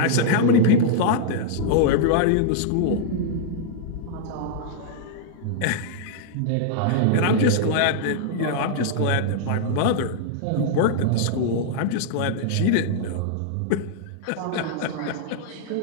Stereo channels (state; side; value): different; both; correlation -0.01